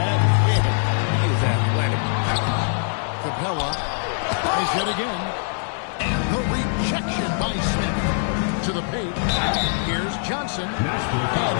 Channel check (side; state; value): right; silent; 64 dB below the other